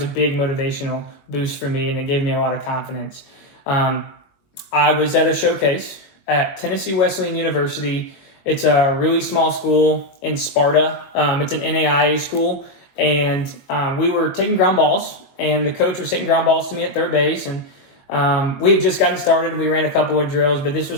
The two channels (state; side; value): late; right; 22 ms